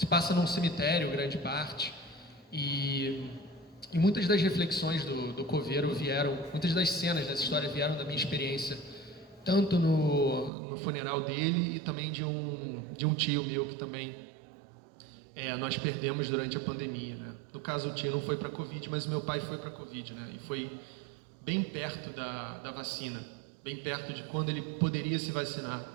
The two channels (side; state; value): left; drops out; at 10.5 s